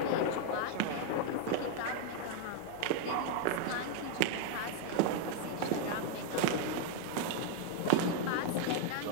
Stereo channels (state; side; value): different; both; correlation 0.00